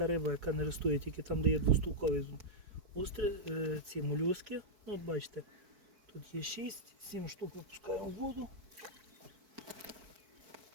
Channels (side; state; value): left; late; 4.6 ms